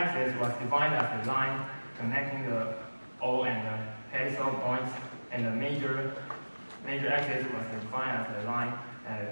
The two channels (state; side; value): inverted; both; correlation -1.00